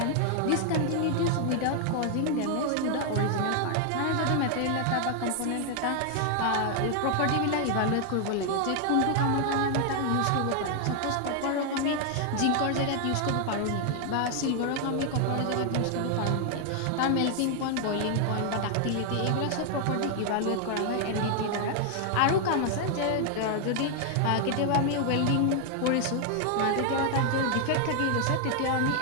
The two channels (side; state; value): both; different; correlation 0.00